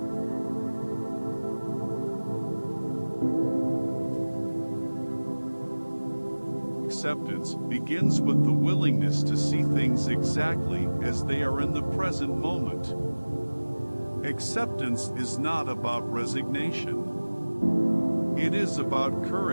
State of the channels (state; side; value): inverted; both; correlation -1.00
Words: acceptance begins with the willingness to see things exactly as they are in the present moment. Acceptance is not about resignation. It is about